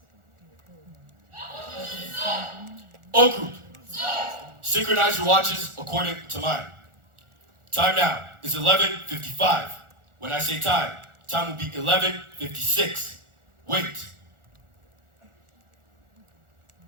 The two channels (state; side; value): late; left; 1.4 ms